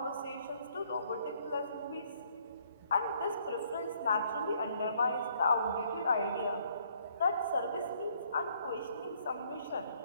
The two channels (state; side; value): inverted; both; correlation -0.66